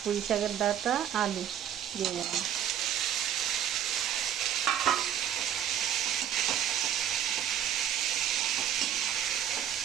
পুঁই শাকের ডাঁটা, আলু দিয়ে দিলাম,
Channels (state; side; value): quieter; left; 10.1 dB